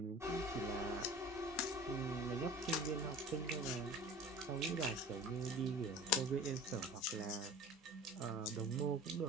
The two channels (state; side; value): normal; both; correlation 0.40